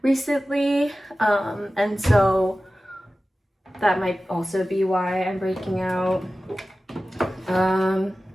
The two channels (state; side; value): normal; both; correlation 0.95